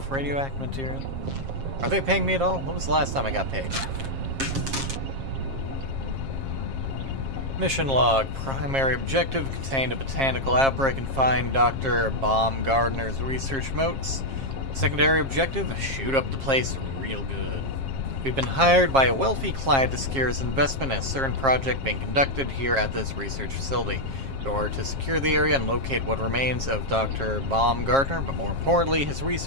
radioactive material? Are they paying me at all? When was the last time I got paid? Mission log. Primary objective: contained a botanical outbreak and find Dr. Baumgartner's research notes. Secondary objective: shoot up the place real good. We've been hired by a wealthy client to secure his investment in a certain project being conducted here at this research facility. In order to secure the area and locate what remains of Dr. Baumgartner, but more importantly, his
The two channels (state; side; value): late; left; 7.4 ms